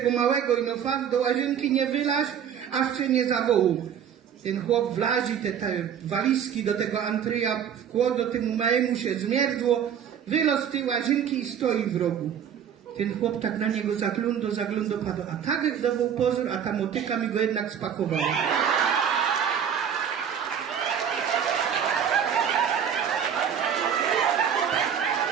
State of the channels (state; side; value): quieter; left; 8.4 dB